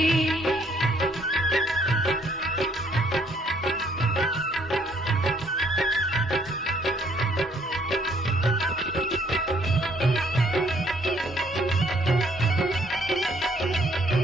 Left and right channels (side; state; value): both; normal; correlation 0.65